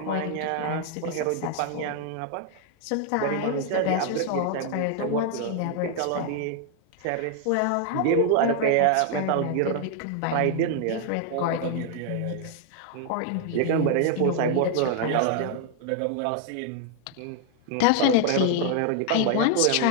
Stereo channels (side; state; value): both; different; correlation 0.00